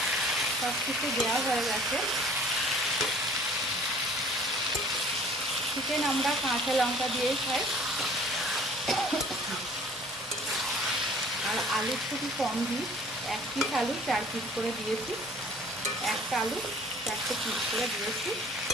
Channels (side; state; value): both; normal; correlation 0.51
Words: সব কিছু দেওয়া হয়ে গেছে। চিকেন আমরা কাঁচা লঙ্কা দিয়েই খাই, আর আলু খুবই কম দিই, 1 পিস আলু 4 পিস করে দিয়েছি, একটা আলু 4টে পিস করে দিয়েছি।